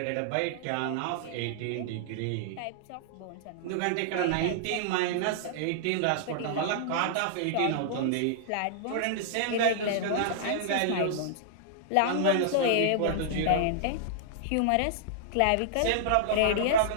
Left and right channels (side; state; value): both; different; correlation -0.01